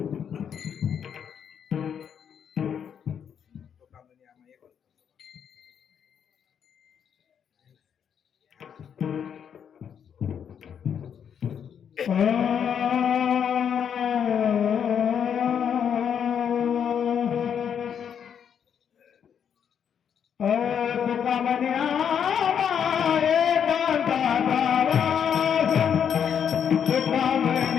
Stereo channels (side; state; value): right; quieter; 8.1 dB